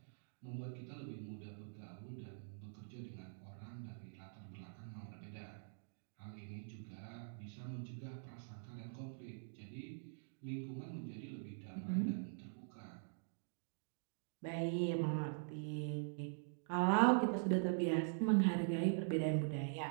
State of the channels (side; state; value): left; silent; digital silence